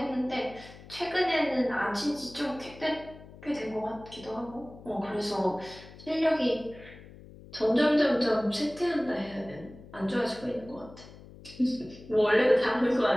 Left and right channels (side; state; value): left; noise; hum, 19 dB below the sound